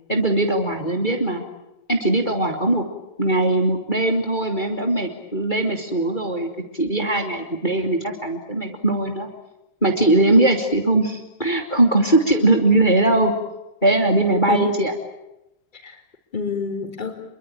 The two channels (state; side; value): late; right; 2.3 ms